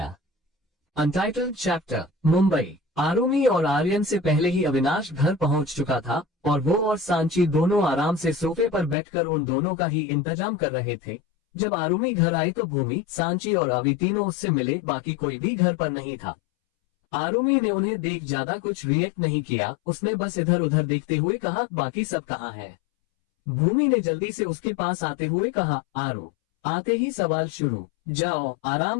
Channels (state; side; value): drops out; right; at 9.0 s